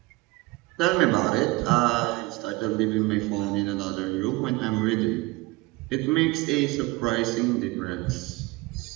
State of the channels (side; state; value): left; quieter; 21.9 dB